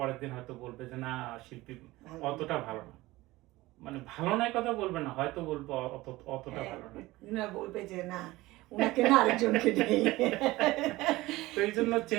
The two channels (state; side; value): quieter; left; 19.0 dB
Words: দিন হয়তো বলবে যে না, শিল্পী অতটা ভালো না। মানে ভালো নয় কথা বলবে না, হয়তো বলবো অতটা ভালো না, বলবে যে না, ওনাকে না আরেকজনকে দেই। তো এই জন্য